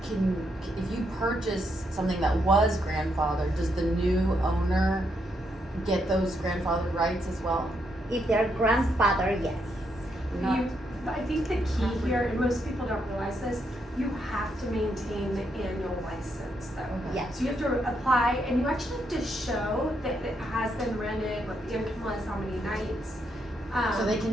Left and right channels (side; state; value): both; normal; correlation 0.78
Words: if you purchase something that was grandfathered, does the new owner get those grandfathered rights as well? If they're grandfather, yes. Not, I think the key here, and most people don't realize this, you have to maintain the annual license though. Okay. yes. So you have to apply, and you actually have to show that it has been rented, what the income was, how many nights. So they